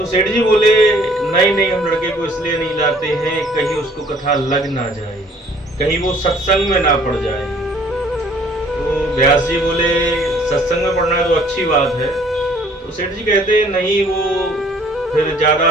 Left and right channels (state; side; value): normal; both; correlation 0.57